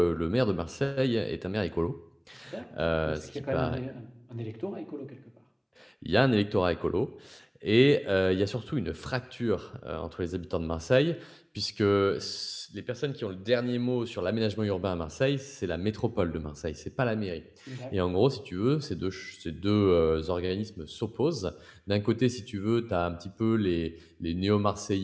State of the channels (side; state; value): both; identical; correlation 1.00